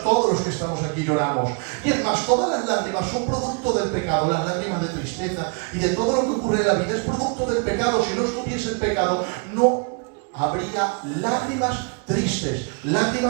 todos los que estamos aquí, lloramos. Y es más, todos todas las lágrimas son producto del pecado, las lágrimas de tristeza y de todo lo que ocurre en la vida es producto del pecado. Si no estuviese el pecado, no habría lágrimas tristes,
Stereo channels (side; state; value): left; quieter; 37.6 dB